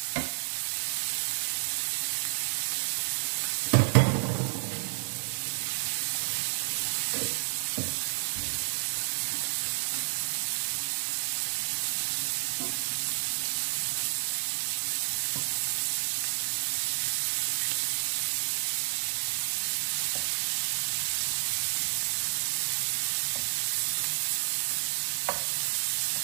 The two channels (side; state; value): left; silent; 57 dB below the other